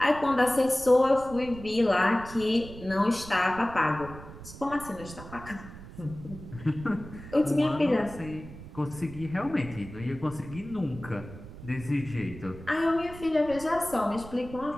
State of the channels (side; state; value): right; noise; rumble, 14 dB below the sound